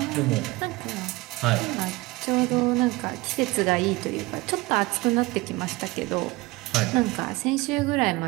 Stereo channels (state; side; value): quieter; left; 21.9 dB